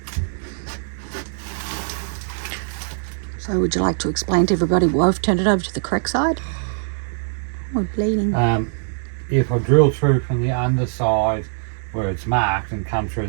So would you like to explain to everybody why we've turned it over to the correct side? We're bleeding. If I drill through from the underside where it's marked and come through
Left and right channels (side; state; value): left; silent; digital silence